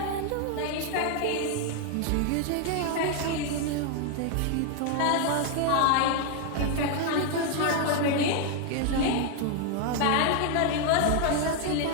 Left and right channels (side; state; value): both; different; correlation 0.00